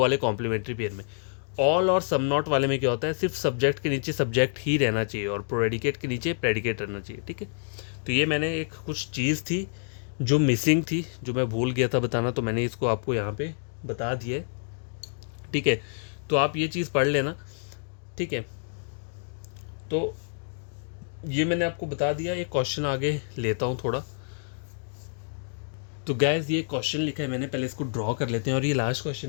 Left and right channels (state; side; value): silent; right; digital silence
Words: कॉम्प्लीमेंट्री पेयर में। ऑल और सम नॉट वाले में क्या होता है, सिर्फ सब्जेक्ट के नीचे सब्जेक्ट ही रहना चाहिए और प्रेडिकेट के नीचे प्रेडिकेट रहना चाहिए, ठीक है। तो ये मैंने एक कुछ चीज़ थी जो मिसिंग थी, जो मैं भूल गया था बताना, तो मैंने इसको आपको यहाँ पे बता दिया है, ठीक है। तो आप ये चीज़ पढ़ लेना, ठीक है। तो ये मैंने आपको बता दिया। एक क्वेश्चन आगे लेता हूँ थोड़ा। तो गैस ये क्वेश्चन लिखा है मैंने, पहले इसको ड्रॉ कर लेते हैं, और ये लास्ट